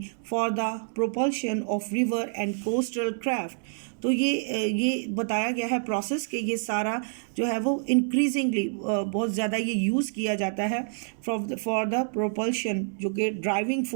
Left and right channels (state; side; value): silent; left; digital silence